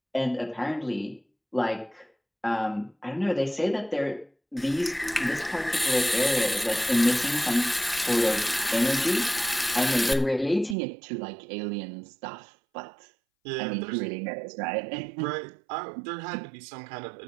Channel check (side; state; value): left; drops out; at 10.8 s